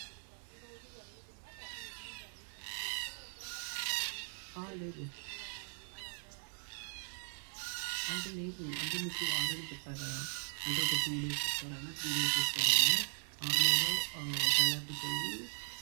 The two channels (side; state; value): left; silent; 52 dB below the other